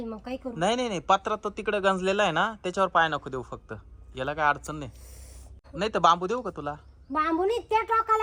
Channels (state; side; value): identical; both; correlation 1.00